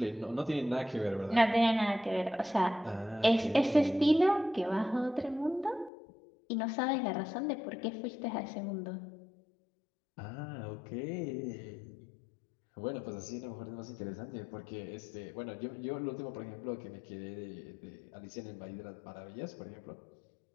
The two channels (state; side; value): drops out; right; at 5.9 s